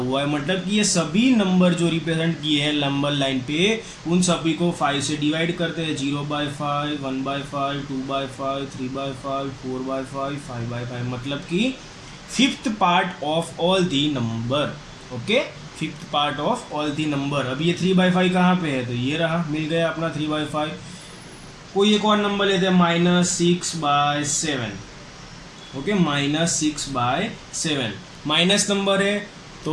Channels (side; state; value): both; identical; correlation 1.00